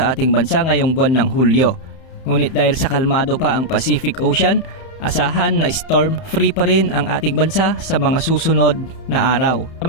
ating bansa ngayong buwan ng Hulyo. Ngunit dahil sa kalmado pa ang Pacific Ocean, asahan na storm-free pa rin ang ating bansa sa mga susunod na araw.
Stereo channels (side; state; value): right; late; 31 ms